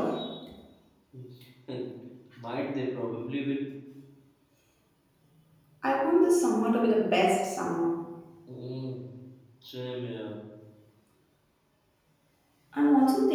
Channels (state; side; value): identical; both; correlation 1.00